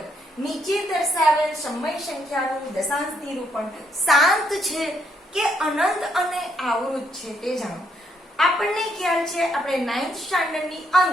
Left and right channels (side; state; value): both; normal; correlation 0.73